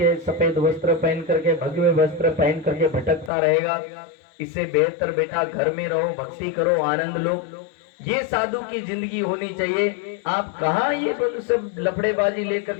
सफेद वस्त्र पहन करके, भगवे वस्त्र पहन करके भटकता रहेगा। इससे बेहतर बेटा घर में रहो, भक्ति करो, आनंद लो। ये साधु की जिंदगी होनी चाहिए। आप कहाँ ये सब लफड़ेबाजी लेकर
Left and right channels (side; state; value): right; drops out; at 3.3 s